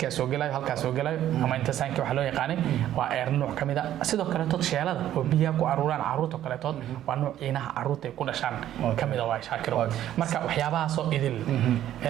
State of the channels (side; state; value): left; quieter; 12.0 dB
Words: soo galayo halka soo galayo ama inta saanki waxa loo yaqaanay waa eer nooc kamid ah sidoo kaleetood sheelada oo biyaha ku aruuraan caruurta kaleetood waa nooc inaha caruurta ku dhashaan kamid ah waa shaakiro marka waxyaabahaas oo idil